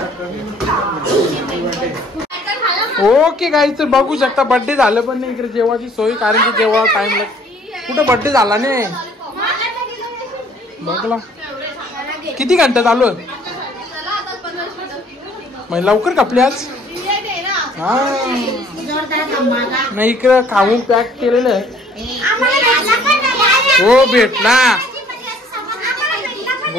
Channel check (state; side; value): normal; both; correlation 0.58